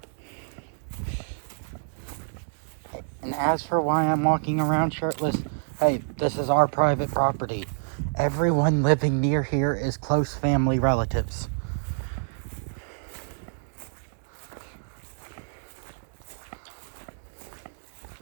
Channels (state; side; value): silent; left; digital silence